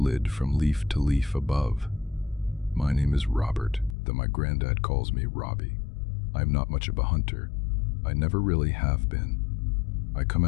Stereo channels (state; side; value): drops out; right; at 4.0 s